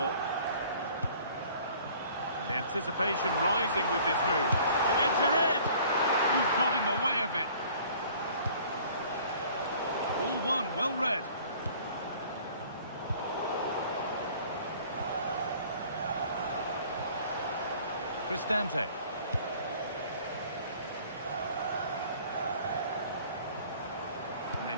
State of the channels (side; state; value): both; inverted; correlation -0.52